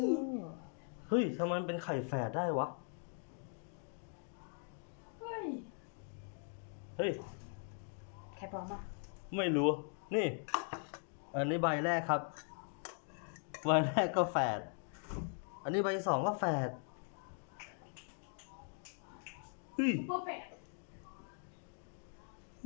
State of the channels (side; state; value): right; silent; 51 dB below the other